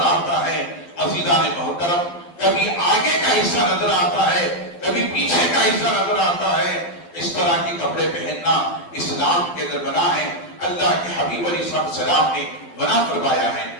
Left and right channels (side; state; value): right; late; 12 ms